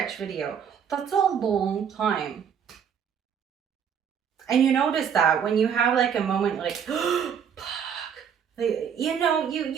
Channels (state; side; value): quieter; left; 7.8 dB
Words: video. That's a long time. And you notice that when you have like a moment like, you know,